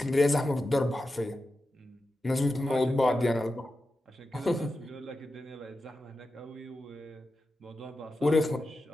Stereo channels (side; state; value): both; normal; correlation 0.91